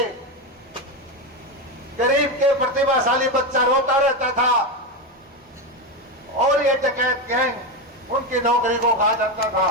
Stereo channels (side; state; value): both; normal; correlation 0.14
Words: गरीब के प्रतिभाशाली बच्चा रोता रहता था और ये डकैत गैंग उनकी नौकरी को खा जाता था।